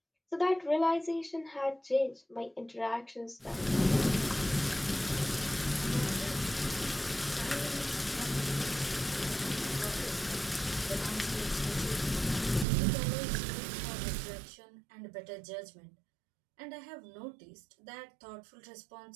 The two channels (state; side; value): drops out; left; at 12.7 s